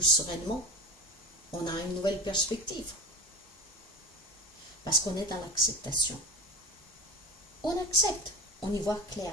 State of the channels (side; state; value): both; normal; correlation 0.27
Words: sereinement. On a une nouvelle perspective. Parce qu'on est dans l'acceptation. On accepte. On y voit